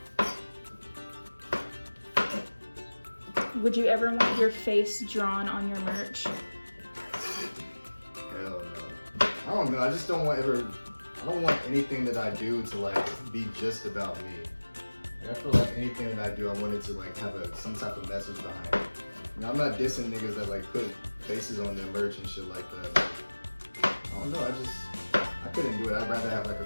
Would you ever want your face drawn on your merch? Hell no. I don't know. I just don't want I don't want anything that I do to like be just about me. Like, I feel like anything that I do, I want it to like have some type of message behind it. You know, I'm not dissing niggas that like put faces on their merch and shit like that. But I don't know. I couldn't do it. I'd rather have like a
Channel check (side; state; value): both; inverted; correlation -1.00